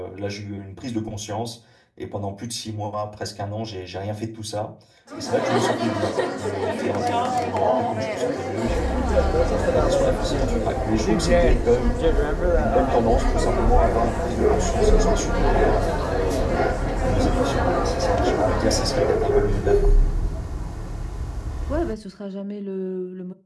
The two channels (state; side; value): identical; both; correlation 1.00